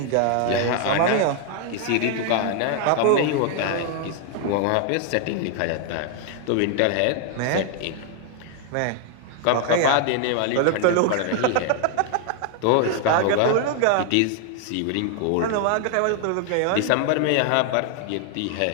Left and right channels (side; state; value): both; different; correlation 0.00